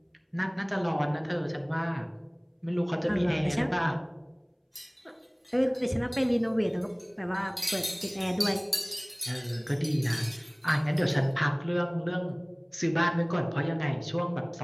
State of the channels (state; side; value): identical; both; correlation 1.00